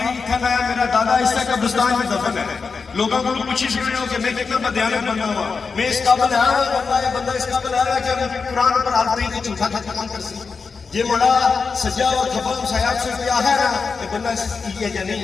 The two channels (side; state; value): right; quieter; 4.9 dB